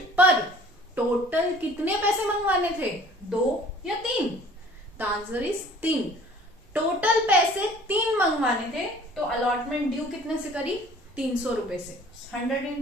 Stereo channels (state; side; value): normal; both; correlation 0.51